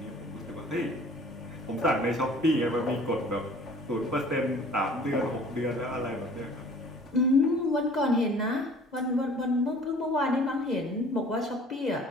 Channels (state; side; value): normal; both; correlation 0.50